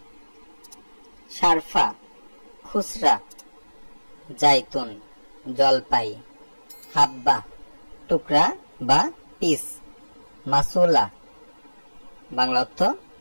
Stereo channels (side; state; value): both; inverted; correlation -1.00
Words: শারফা, খুচরা। জাইতুন, জলপাই। হাব্বা, টুকরা বা পিস। মাসুলা, বাংলা অর্থ